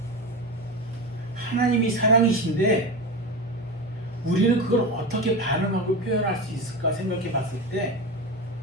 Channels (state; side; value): normal; both; correlation 0.23